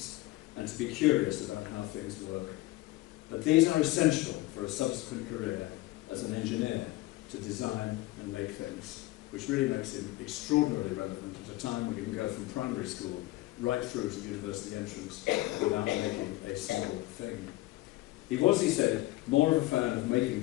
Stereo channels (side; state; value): right; quieter; 18.3 dB